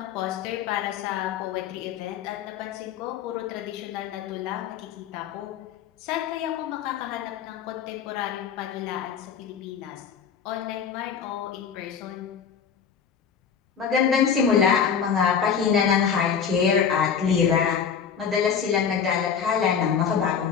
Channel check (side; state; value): right; quieter; 7.2 dB